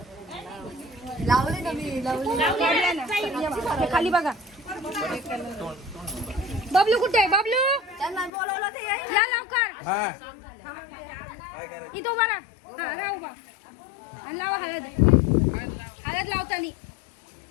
लावले ना मी लावले खाली बघा बबलू कुठे आहे बबलू त्यांना बोलवलं ते या लवकर इथं उभा राहा हा राहा उभा आणि लावा हळद हळद लावतानी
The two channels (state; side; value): drops out; right; at 8.3 s